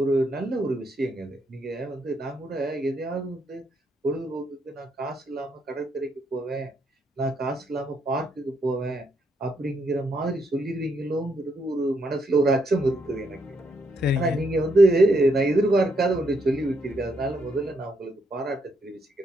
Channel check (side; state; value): both; normal; correlation 0.76